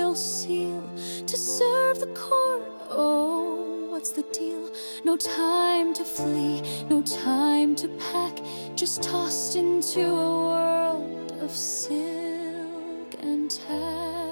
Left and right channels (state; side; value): inverted; both; correlation -1.00